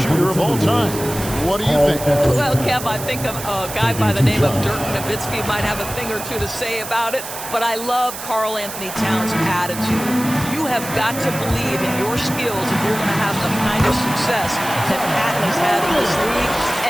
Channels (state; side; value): noise; right; hiss, 10 dB below the sound